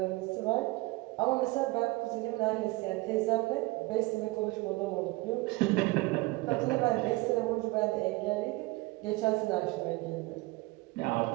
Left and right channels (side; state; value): left; quieter; 22.0 dB